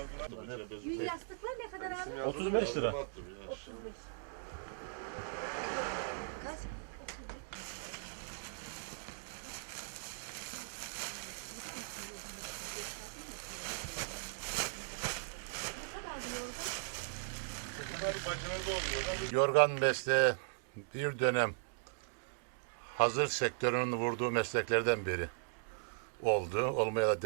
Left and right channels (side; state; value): left; silent; digital silence